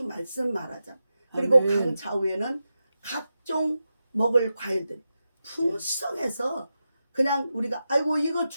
말씀 말하잖아. 그리고 아멘. 강 좌우에는 각종 먹을 과일들이 풍성해서 그냥 우리가 아이고 이거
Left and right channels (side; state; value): both; inverted; correlation -0.90